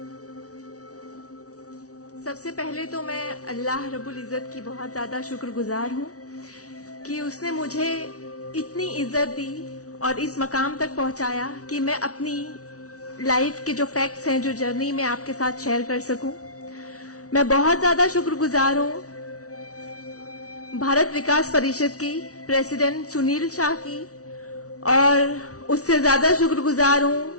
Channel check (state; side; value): late; right; 0.66 ms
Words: सबसे पहले तो मैं अल्लाह रब्बुल इज़्ज़त की बहुत ज्यादा शुक्रगुजार हूँ कि उसने मुझे इतनी इज्जत दी और इस मकाम तक पहुंचाया कि मैं अपनी लाइफ के जो फैक्ट्स हैं, जो जर्नी में आपके साथ शेयर कर सकूं। मैं बहुत ज्यादा शुक्रगुजार हूँ भारत विकास परिषद की प्रेसिडेंट सुनील शाह की, और उससे ज्यादा शुक्रगुजार